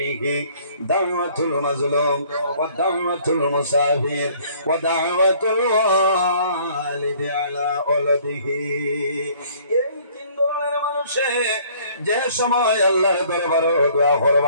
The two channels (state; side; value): inverted; both; correlation -0.57